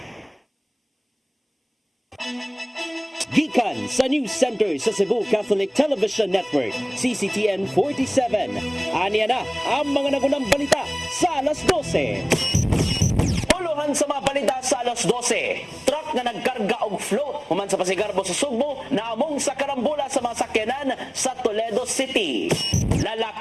Gikan sa News Center sa Cebu Catholic Television Network, CCTN 47. Aniya na ang mga nagunang balita sa alas 12. Uluhan sa mga balita sa alas 12. Truck na nagkarga og float human sa Pasigarbo sa Sugbo naamong sa karambola sa mga sakyanan sa Toledo City.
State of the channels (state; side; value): identical; both; correlation 1.00